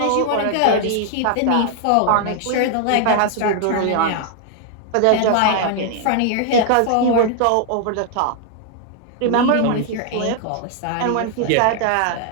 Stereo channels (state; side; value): different; both; correlation 0.00